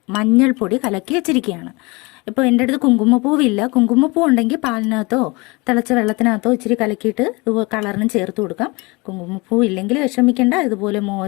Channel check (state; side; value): quieter; right; 25.9 dB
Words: മഞ്ഞൾപ്പൊടി കലക്കി വെച്ചിരിക്കുകയാണ്. ഇപ്പോൾ എൻ്റെ അടുത്ത് കുങ്കുമപ്പൂവില്ല. കുങ്കുമപ്പൂ ഉണ്ടെങ്കിൽ പാലിനകത്തോ തിളച്ച വെള്ളത്തിനകത്തോ ഇച്ചിരി കലക്കിയിട്ട് കളറിനും ചേർത്ത് കൊടുക്കാം. കുങ്കുമപ്പൂ ഇല്ലെങ്കിൽ വിഷമിക്കേണ്ട. ഇതുപോലെ